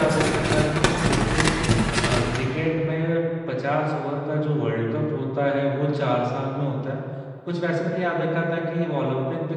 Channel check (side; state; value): both; identical; correlation 1.00